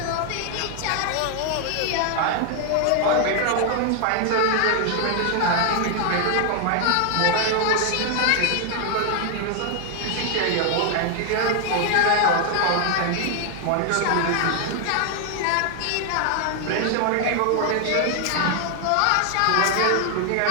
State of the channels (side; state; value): both; different; correlation 0.00